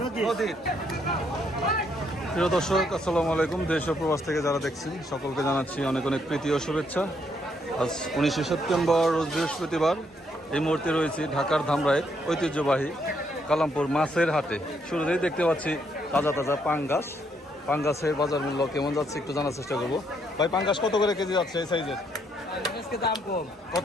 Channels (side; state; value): both; normal; correlation 0.73